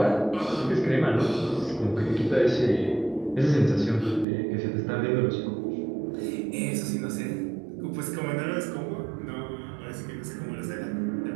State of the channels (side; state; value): left; drops out; at 4.2 s